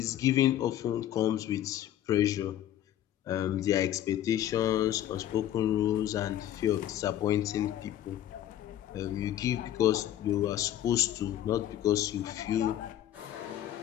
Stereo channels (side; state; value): right; quieter; 12.0 dB